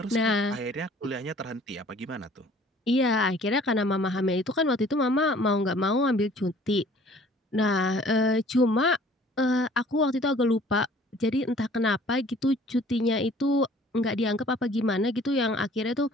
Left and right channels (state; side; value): normal; both; correlation 0.53